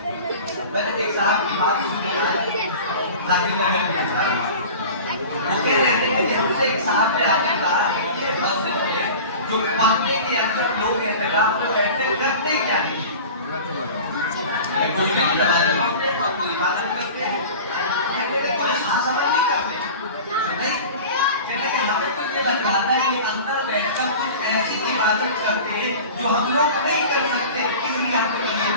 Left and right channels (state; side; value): inverted; both; correlation -0.37